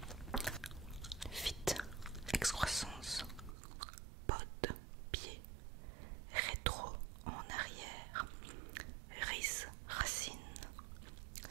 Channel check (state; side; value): drops out; left; at 3.6 s